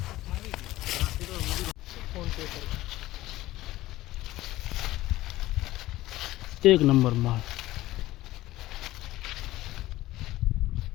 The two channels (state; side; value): quieter; right; 16.5 dB